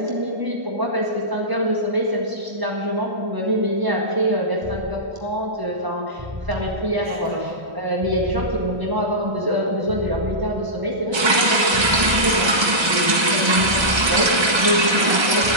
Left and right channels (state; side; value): late; left; 1.3 ms